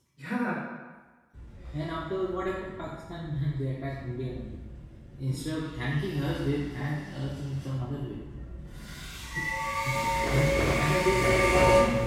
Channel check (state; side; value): identical; both; correlation 1.00